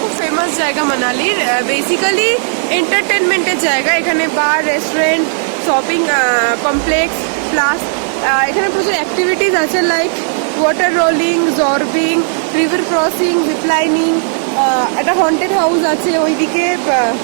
ফেমাস জায়গা মানালির। বেসিক্যালি এন্টারটেনমেন্টের জায়গা। এখানে বার, রেস্টুরেন্ট, শপিং কমপ্লেক্স, প্লাস এখানে প্রচুর অ্যাক্টিভিটিস আছে, like water rolling, zorbing, river crossing, ziplining. একটা হন্টেড হাউস আছে ওইদিকে,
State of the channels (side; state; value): left; silent; digital silence